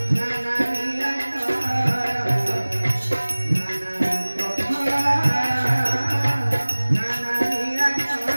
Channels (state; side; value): inverted; both; correlation -1.00